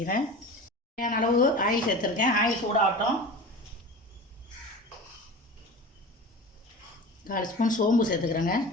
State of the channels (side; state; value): both; normal; correlation 0.34